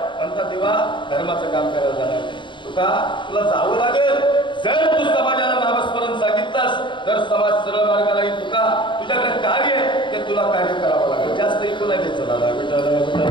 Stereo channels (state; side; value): late; right; 0.23 ms